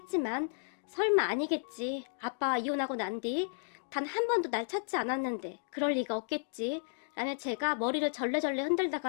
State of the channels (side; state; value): right; silent; digital silence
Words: 설마 아니겠지. 아빠와 이혼하고 난 뒤 단 한 번도 날 찾지 않았는데 그럴 리가 없겠지. 라며 제가 머리를 절레절레